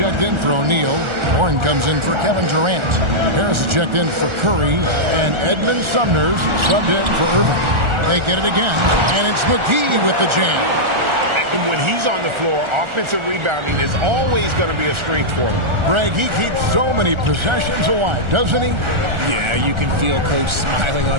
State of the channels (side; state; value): left; late; 1.4 ms